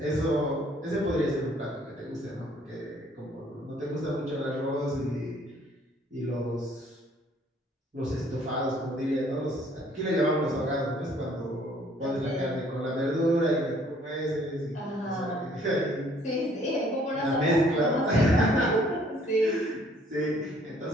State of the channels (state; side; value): normal; both; correlation 0.60